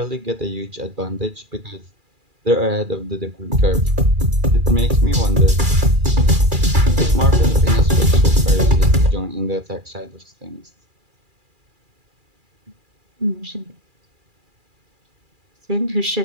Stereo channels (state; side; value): late; left; 2.4 ms